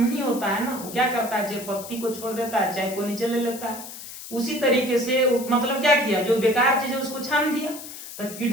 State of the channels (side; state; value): left; noise; hiss, 12 dB below the sound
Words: होता है ना, वो क्या करता है, चाय पत्ती को छोड़ देता है, चाय को नीचे ले लेता है। उसी तरीके से मतलब क्या किया, जो बेकार चीज है उसको छान दिया। तो